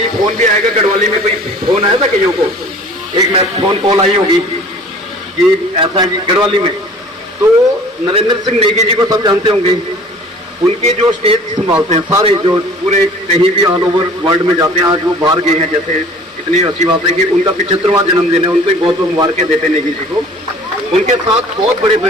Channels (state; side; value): normal; both; correlation 0.48